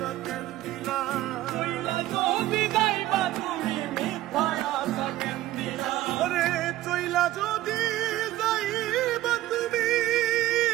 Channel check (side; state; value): left; quieter; 15.3 dB